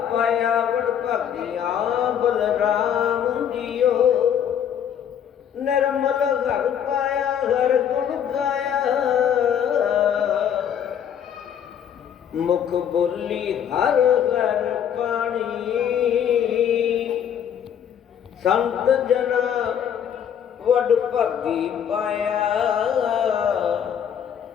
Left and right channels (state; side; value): quieter; right; 8.8 dB